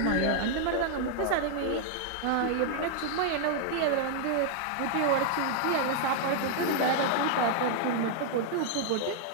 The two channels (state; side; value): different; both; correlation 0.00